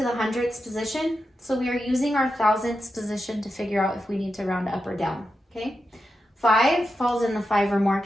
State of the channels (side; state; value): both; normal; correlation 0.89